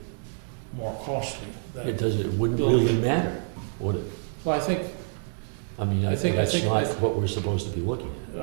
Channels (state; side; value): silent; left; digital silence